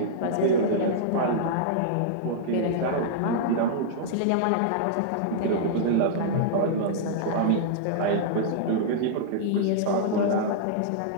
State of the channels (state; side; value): different; both; correlation -0.02